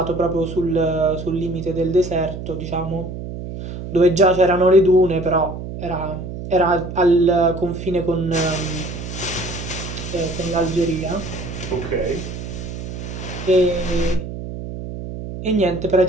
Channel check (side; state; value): right; noise; hum, 8 dB below the sound